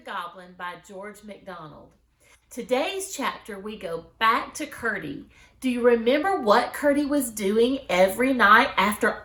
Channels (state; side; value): identical; both; correlation 1.00